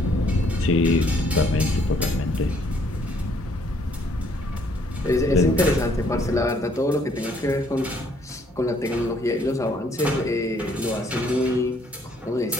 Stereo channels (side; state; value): both; normal; correlation 0.65